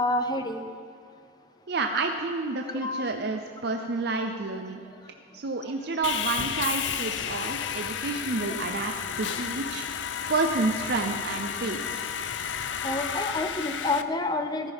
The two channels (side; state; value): both; normal; correlation 0.13